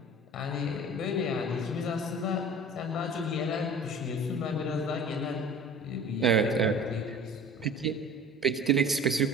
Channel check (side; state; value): both; normal; correlation 0.42